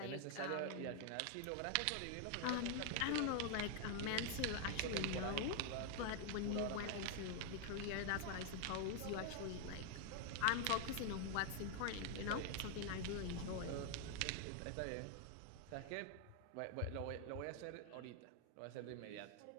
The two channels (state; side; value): different; both; correlation 0.00